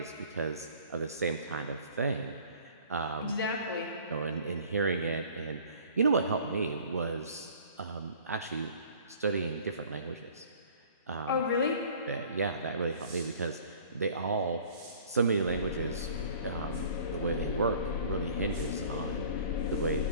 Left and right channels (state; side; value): inverted; both; correlation -0.50